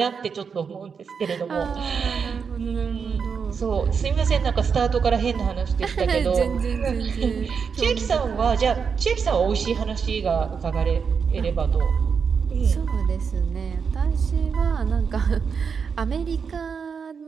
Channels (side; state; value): left; quieter; 6.1 dB